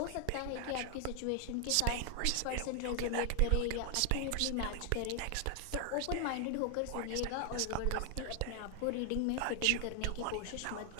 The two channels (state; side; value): different; both; correlation 0.00